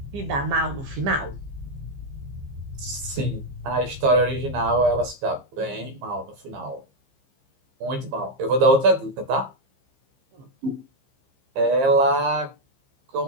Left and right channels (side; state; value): left; late; 15 ms